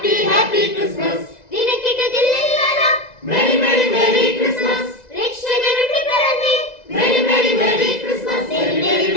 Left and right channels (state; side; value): late; right; 2.0 ms